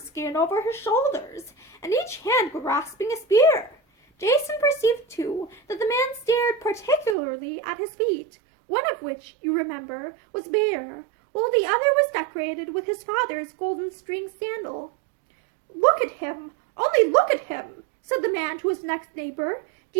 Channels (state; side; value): drops out; left; at 7.2 s